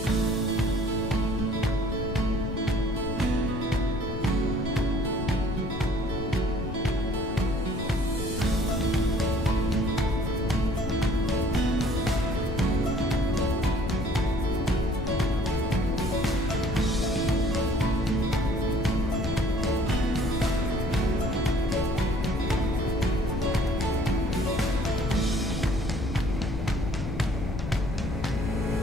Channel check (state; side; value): noise; left; rumble, 5 dB below the sound